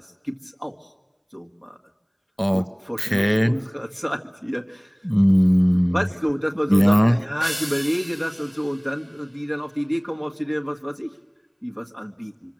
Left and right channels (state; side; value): identical; both; correlation 1.00